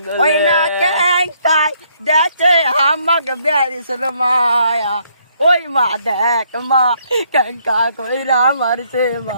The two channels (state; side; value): inverted; both; correlation -0.69